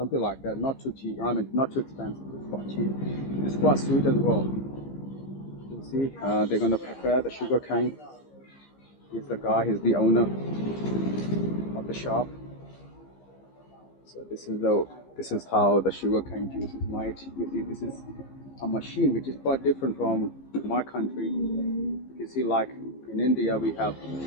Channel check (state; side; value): late; right; 15 ms